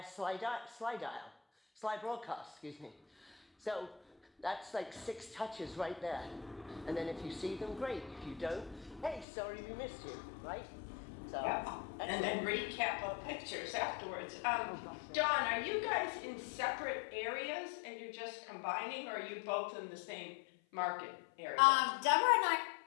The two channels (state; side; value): drops out; right; at 9.2 s